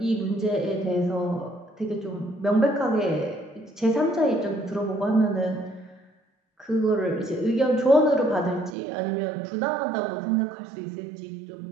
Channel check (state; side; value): drops out; left; at 8.8 s